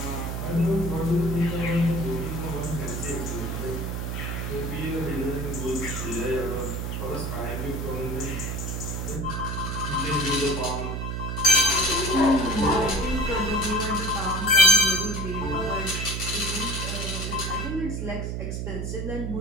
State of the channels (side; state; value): right; noise; hum, 3 dB below the sound